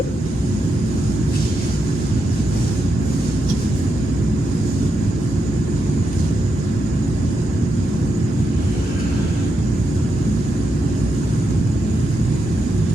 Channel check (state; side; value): normal; both; correlation 0.84